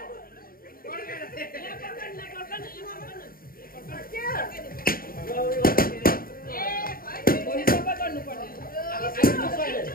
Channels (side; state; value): right; late; 0.42 ms